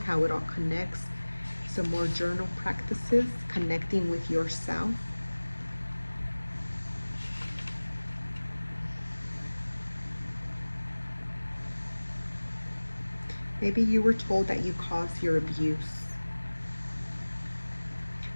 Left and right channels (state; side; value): inverted; both; correlation -1.00